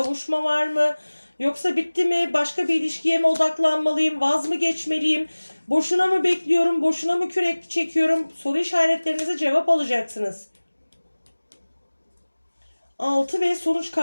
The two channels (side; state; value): both; inverted; correlation -1.00